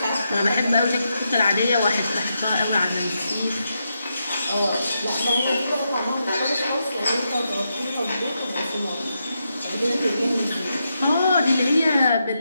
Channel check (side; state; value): both; inverted; correlation -0.84